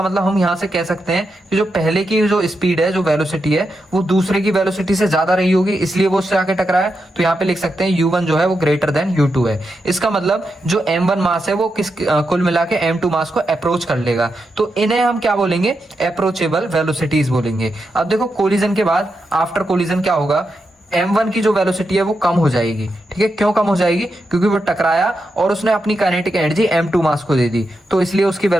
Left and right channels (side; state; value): both; normal; correlation 0.86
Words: मतलब हम यहाँ से कह सकते हैं कि जो पहले की जो स्पीड है, जो वेलोसिटी है, वो दूसरे की वेलोसिटी से ज्यादा रही होगी, इसलिए वो उससे आके टकराया। तो यहाँ पे लिख सकते हैं u1 जो है वो ग्रेटर देन u2 है। इसका मतलब जो m1 मास है वो कुल मिला के m2 मास को अप्रोच कर लेगा, तो इन्हें हम क्या बोलेंगे? अप्रोचेबल वेलोसिटीज बोलेंगे। अब देखो कोलिजन के बाद आफ्टर कोलिजन क्या होगा? m1 की जो वेलोसिटी है वो कम हो जाएगी। ठीक है, क्यों कम हो जाएगी? क्योंकि वो टकराया और उसने अपनी काइनेटिक एनर्जी m2 मास को दे दी, तो इसलिए उसकी